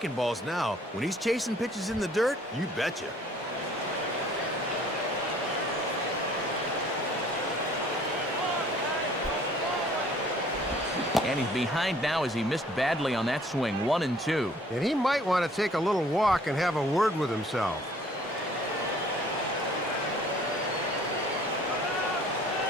balls now. When he's chasing pitches in the dirt, you betcha. And he's behind now as he missed badly on that swing. 1-2. And he might want to take a little walk and have a word with himself.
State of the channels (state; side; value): normal; both; correlation 0.56